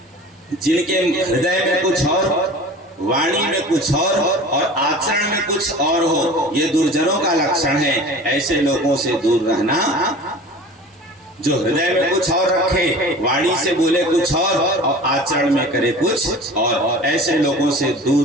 जिनके हृदय में कुछ और, वाणी में कुछ और आचरण में कुछ और हो, ये दुर्जनों का लक्षण है। ऐसे लोगों से दूर रहना। जो हृदय में कुछ और रखे, वाणी से बोले कुछ और आचरण में करे कुछ और, ऐसे लोगों से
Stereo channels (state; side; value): normal; both; correlation 0.40